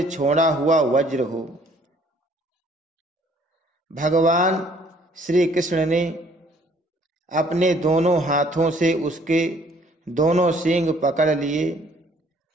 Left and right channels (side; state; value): both; normal; correlation 0.60